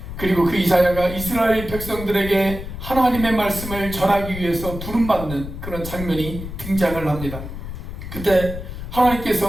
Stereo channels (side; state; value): left; noise; rumble, 9 dB below the sound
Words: 그리고 그 이사야가 이스라엘 백성들에게 하나님의 말씀을 전하기 위해서 부름받는 그런 장면이 등장을 합니다. 그때